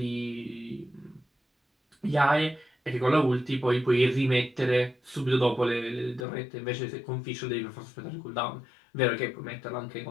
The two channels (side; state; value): right; drops out; at 6.2 s